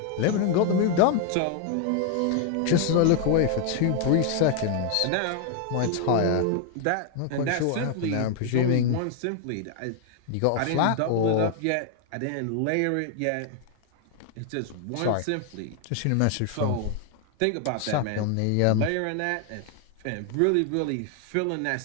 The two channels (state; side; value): different; both; correlation 0.00